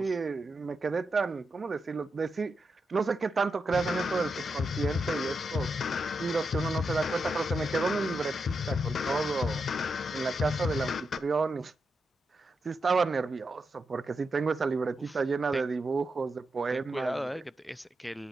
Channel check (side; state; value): both; normal; correlation 0.86